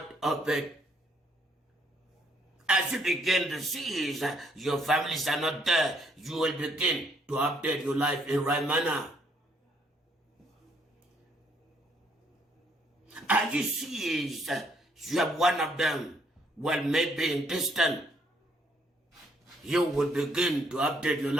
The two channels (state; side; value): normal; both; correlation 0.68